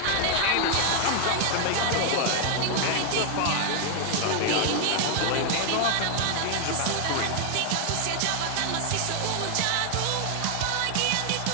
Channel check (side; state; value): both; different; correlation 0.00